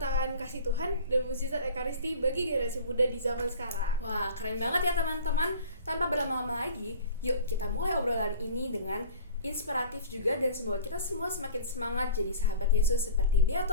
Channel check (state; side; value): inverted; both; correlation -0.41